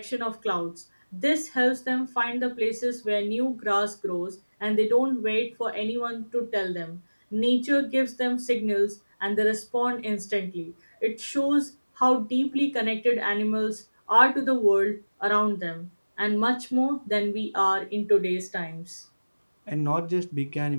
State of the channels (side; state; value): both; inverted; correlation -1.00